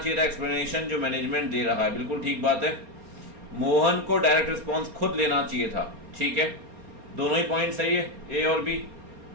था एक्सप्लेनेशन जो मैनेजमेंट दे रहा है, बिल्कुल ठीक बात है। मोहन को डायरेक्ट रिस्पॉन्स खुद लेना चाहिए था, ठीक है, दोनों ही पॉइंट सही है, ए और बी।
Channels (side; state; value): left; late; 4.3 ms